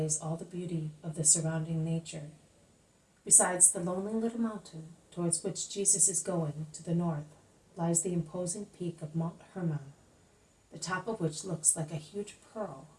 all the beauty of the surrounding nature. Besides the lonely little mountain towards which Jesus is going, to the north, lies the imposing peak of Mount Hermon, the top of which looks like a huge pearl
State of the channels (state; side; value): identical; both; correlation 1.00